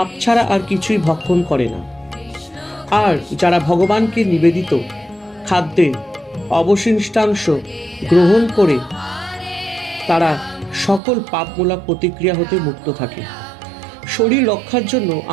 ছাড়া আর কিছুই ভক্ষণ করে না, আর যারা ভগবানকে নিবেদিত খাদ্যের অবশিষ্টাংশ গ্রহণ করে তারা সকল পাপমূলক প্রতিক্রিয়া হতে মুক্ত থাকে। শরীর রক্ষার জন্য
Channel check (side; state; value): left; drops out; at 11.0 s